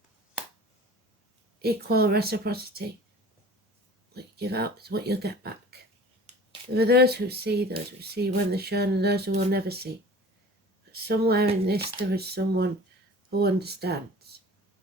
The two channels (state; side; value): normal; both; correlation 0.43